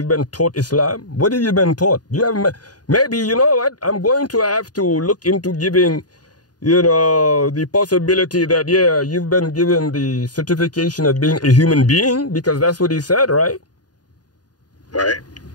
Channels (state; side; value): late; right; 0.69 ms